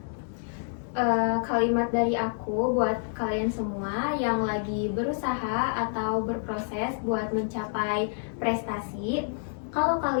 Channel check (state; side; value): silent; right; digital silence